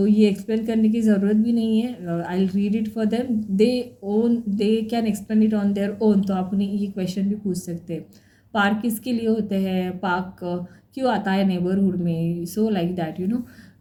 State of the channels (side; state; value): both; identical; correlation 1.00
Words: ये एक्सप्लेन करने की ज़रूरत भी नहीं है. I will read it for them. They can explain it on their own. तो आप उन्हें ये क्वेश्चन भी पूछ सकते हैं. पार्क किसके लिए होते हैं, पार्क क्यों आता है नेबरहुड में. सो like that.